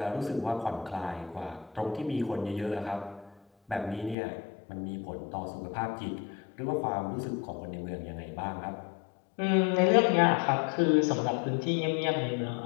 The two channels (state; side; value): drops out; right; at 4.2 s